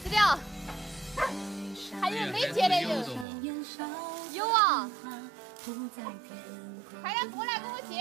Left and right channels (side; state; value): left; drops out; at 3.2 s